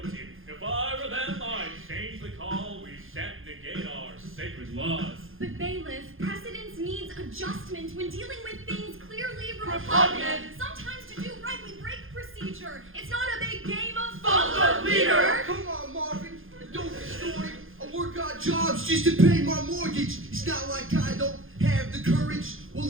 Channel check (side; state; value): left; late; 0.60 ms